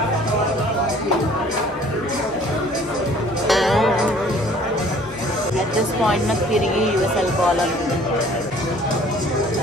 At this point, నాకు తిరిగి US వెళ్ళిపోవాలనుకుంటుంది.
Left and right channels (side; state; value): both; normal; correlation 0.54